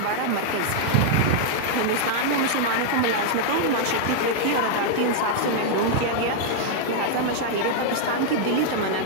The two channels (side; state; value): both; different; correlation -0.01